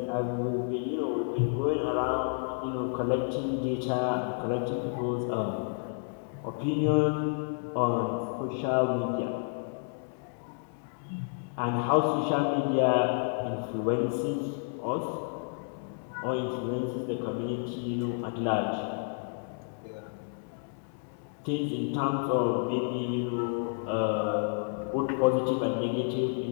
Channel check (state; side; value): silent; right; 57 dB below the other